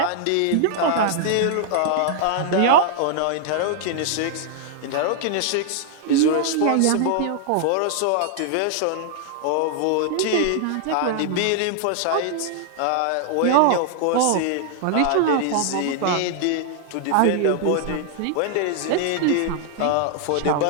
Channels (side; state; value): both; different; correlation 0.00